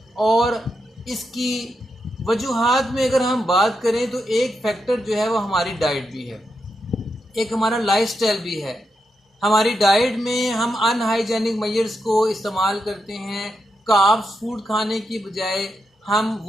और इसकी वजूहात में अगर हम बात करें तो एक फैक्टर जो है वो हमारी डाइट भी है, एक हमारा लाइफस्टाइल भी है। हमारी डाइट में हम अनहाइजेनिक मेजर्स को इस्तेमाल करते हैं। कार्ब्स फूड खाने की बजाय हम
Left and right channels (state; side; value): normal; both; correlation 0.85